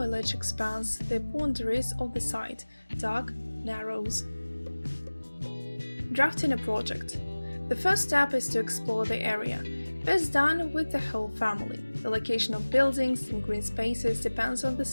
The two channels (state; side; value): inverted; both; correlation -1.00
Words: expands the boundaries of the site, dark narrows. Drafting a project. The first step is to explore the area. Best done with the whole family. The location of buildings and green spaces depends on the